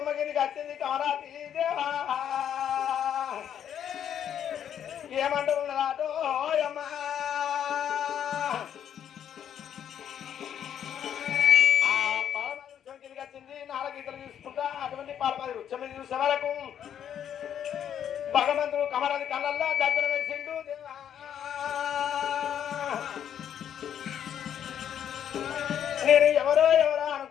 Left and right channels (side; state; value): right; quieter; 9.4 dB